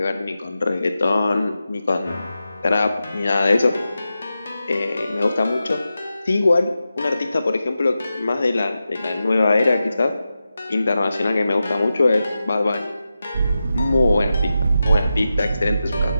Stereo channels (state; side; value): inverted; both; correlation -0.91